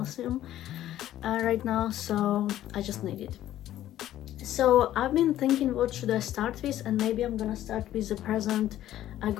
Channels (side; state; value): right; quieter; 13.0 dB